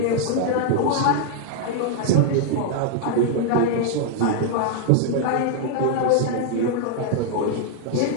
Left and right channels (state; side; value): different; both; correlation 0.00